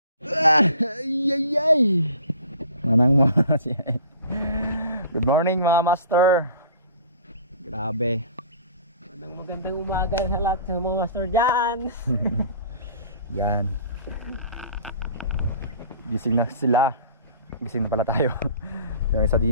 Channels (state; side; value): inverted; both; correlation -0.46